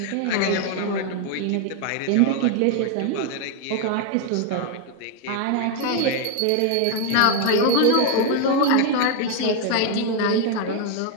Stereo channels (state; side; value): different; both; correlation 0.01